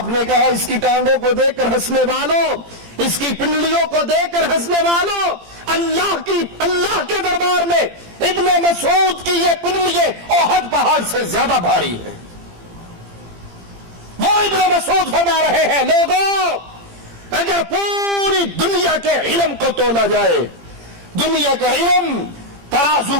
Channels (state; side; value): late; left; 17 ms